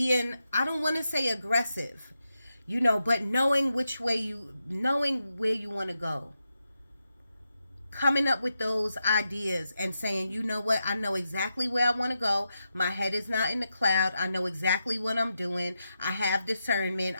I don't want to say aggressive, you know, but knowing where you want to go. Coming up with those ideas and saying, you know what, I know exactly where I want to go. My head is not in the cloud. I know exactly what I'm doing. I have discernment.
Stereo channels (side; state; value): both; inverted; correlation -0.87